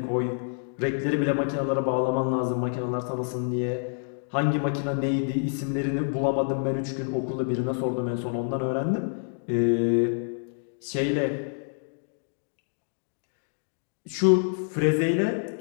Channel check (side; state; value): right; silent; digital silence